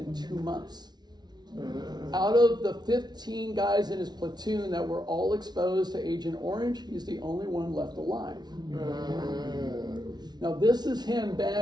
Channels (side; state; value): left; late; 0.20 ms